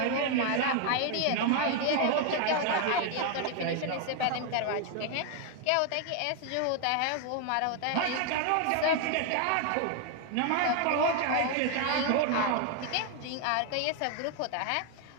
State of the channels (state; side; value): different; both; correlation 0.01